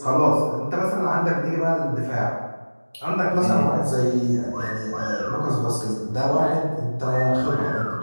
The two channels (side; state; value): both; inverted; correlation -1.00